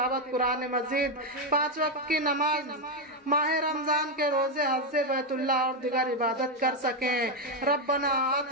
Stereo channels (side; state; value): both; normal; correlation 0.05